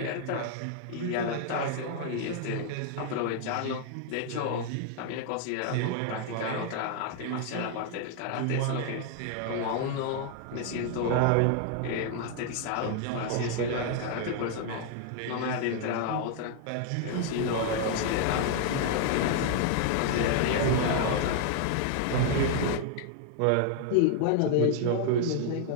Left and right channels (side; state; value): both; different; correlation 0.00